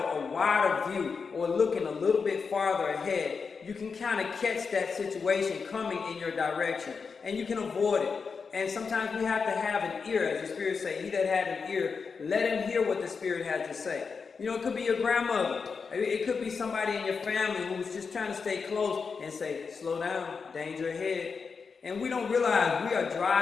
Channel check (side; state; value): right; quieter; 5.3 dB